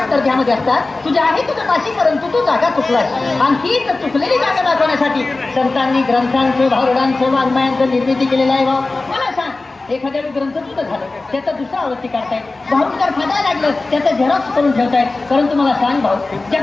दर्जामध्ये असतात. तुझ्या आहे तुझं पाशी, परंतु तू जागा चुकलास. आणि तीच चुकलेली जागा दाखवण्यासाठी संतांनी ग्रंथांचं, भारुडांचं, वाङ्मयांचं निर्मिती केलेलं आहे. भाऊ मला सांग, एखाद्या ग्रंथ तुझं झालं, त्याचा दुसरा आवृत्ती काढतायत, भारूडकार फाटायला लागलं, त्याचं झेरॉक्स करून ठेवतायत. परंतु मला सांग भाऊ, ज्या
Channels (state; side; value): quieter; right; 3.3 dB